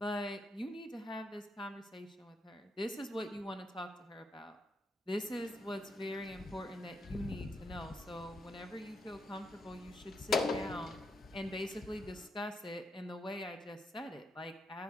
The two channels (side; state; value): both; normal; correlation 0.80